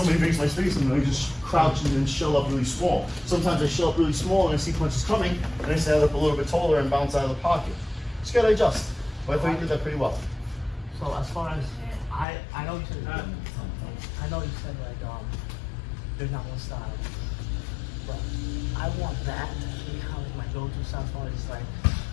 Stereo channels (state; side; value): drops out; right; at 12.2 s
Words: makes my space and I just crouch and then shell up really small. Sometimes I shell up really small and I see punches coming and I stand up a little bit taller and bounce out of the pocket. Just gotta adjust. But I thought you did that pretty well. So as far as, I know you said, like, there's not one style, but I want that to be kind of my go-to style as far as like